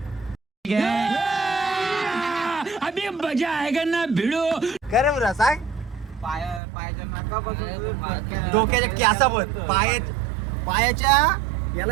अभी मजा आएगा ना भिडो का रे बुरा सांग. डोक्याच्या कॅसाबत पायाच्या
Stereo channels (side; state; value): left; drops out; at 6.6 s